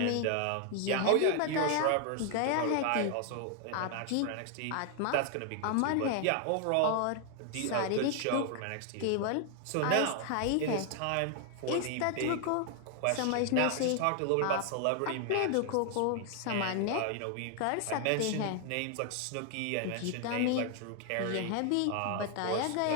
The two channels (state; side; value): different; both; correlation 0.00